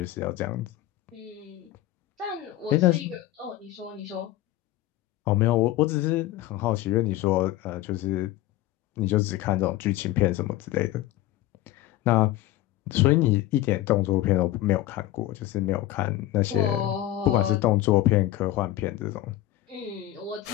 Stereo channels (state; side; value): quieter; right; 14.8 dB